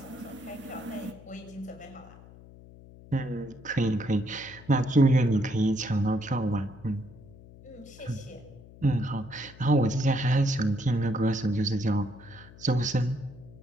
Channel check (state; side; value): noise; left; hum, 20 dB below the sound